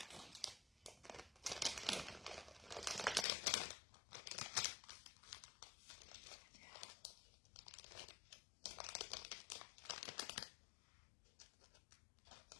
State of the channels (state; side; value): drops out; right; at 3.2 s